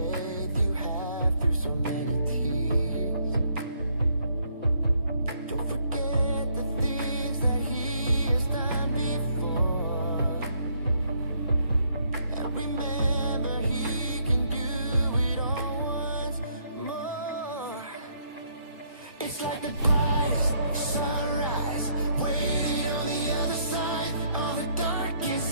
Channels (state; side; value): inverted; both; correlation -0.69